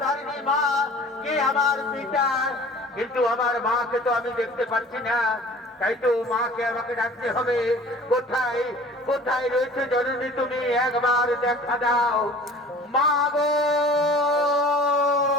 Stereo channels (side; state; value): both; normal; correlation 0.46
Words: মা, কে আমার পিতা। কিন্তু আমার মাকে তো আমি দেখতে পাচ্ছি না। তাই তো মাকে আমাকে ডাকতে হবে। কোথায় কোথায় রয়েছে জননী, তুমি একবার দেখা দাও মা গো।